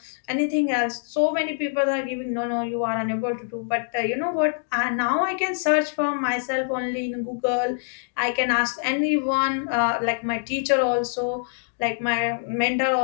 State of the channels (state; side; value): silent; right; digital silence